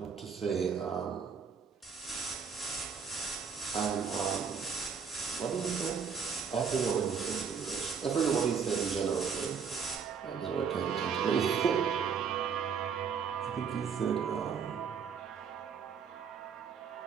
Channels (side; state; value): left; quieter; 6.4 dB